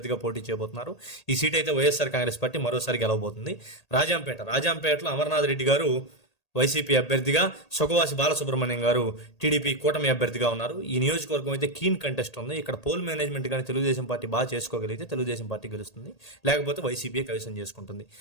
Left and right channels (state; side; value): late; right; 1.8 ms